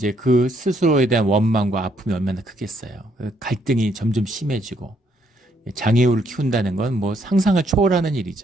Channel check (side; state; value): both; normal; correlation 0.72